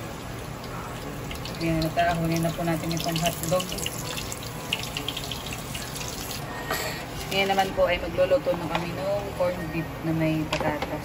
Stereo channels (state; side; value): identical; both; correlation 1.00